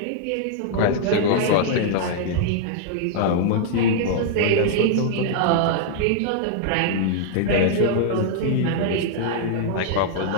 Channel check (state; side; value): different; both; correlation -0.01